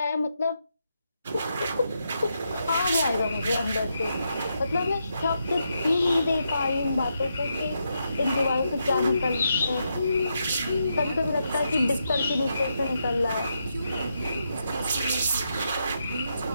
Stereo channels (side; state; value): both; inverted; correlation -0.83